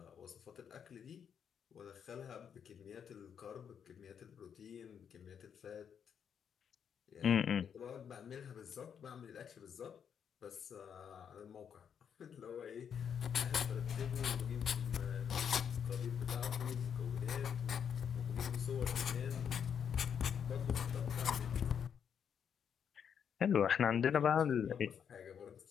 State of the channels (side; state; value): right; quieter; 7.8 dB